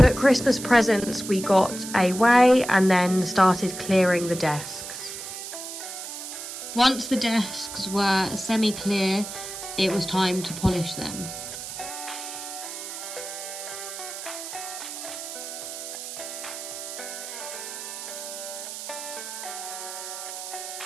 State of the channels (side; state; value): right; noise; hiss, 9 dB below the sound